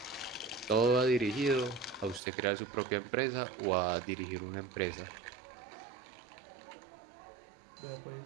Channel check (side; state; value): left; drops out; at 2.2 s